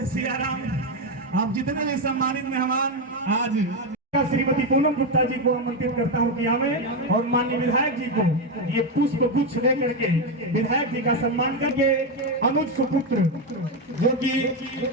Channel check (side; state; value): both; normal; correlation 0.08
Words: सिया राम। आप जितने भी सम्मानित मेहमान आज श्रीमती पूनम गुप्ता जी को आमंत्रित करता हूं कि आवे और माननीय विधायक जी को ये पुष्प गुच्छ दे करके विधायक जी का सम्मान करके अनुज सुपुत्र जो कि